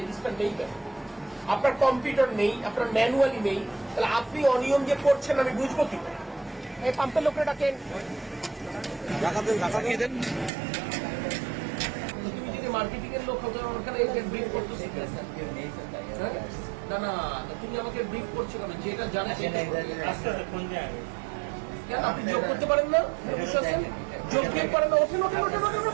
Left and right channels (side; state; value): left; drops out; at 10.5 s